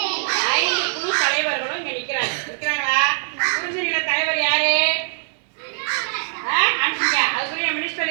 குழு தலைவர்களும் இங்க நிற்கிறாங்களா? குறிஞ்சி நில தலைவர் யாரு? அதுக்குரிய மினிஸ்டர்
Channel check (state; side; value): silent; left; digital silence